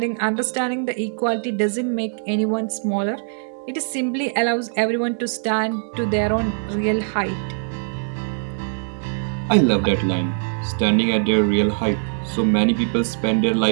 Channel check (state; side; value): silent; left; digital silence